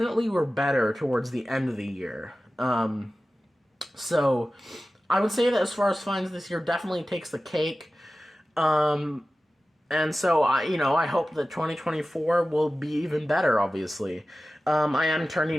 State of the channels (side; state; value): both; normal; correlation 0.95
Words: were better towards the end of the year. So I would say that as far as finds this year, definitely takes the cake. And so I hope that 2024 will be even better, obviously. I am